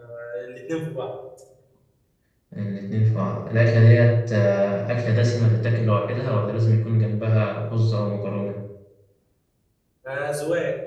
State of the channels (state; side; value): identical; both; correlation 1.00